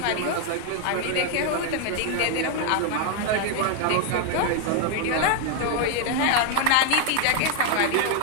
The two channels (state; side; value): different; both; correlation 0.00